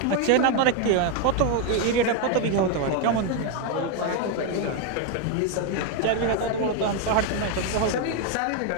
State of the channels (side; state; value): both; different; correlation 0.01